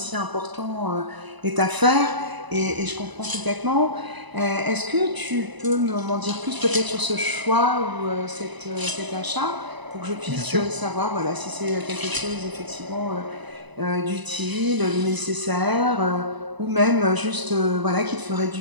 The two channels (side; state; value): left; late; 1.0 ms